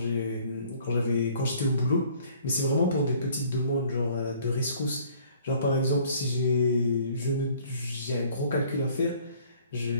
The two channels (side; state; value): both; inverted; correlation -0.57